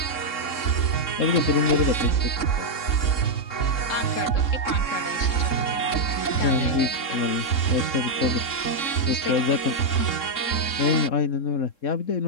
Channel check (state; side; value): late; right; 3.7 ms